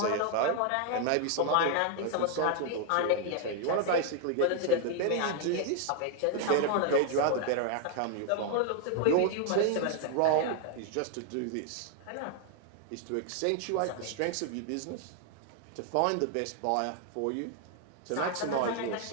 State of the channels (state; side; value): different; both; correlation 0.00